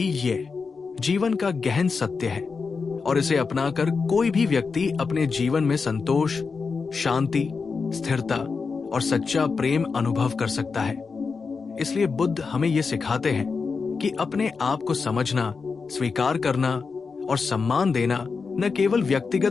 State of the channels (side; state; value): right; quieter; 4.9 dB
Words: ये जीवन का गहन सत्य है, और इसे अपनाकर कोई भी व्यक्ति अपने जीवन में संतोष, शांति, स्थिरता और सच्चा प्रेम अनुभव कर सकता है। इसलिए बुद्ध हमें ये सिखाते हैं कि अपने आप को समझना, स्वीकार करना और सम्मान देना न केवल